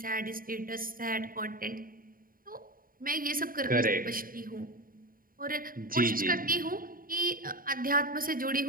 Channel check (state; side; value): late; left; 0.41 ms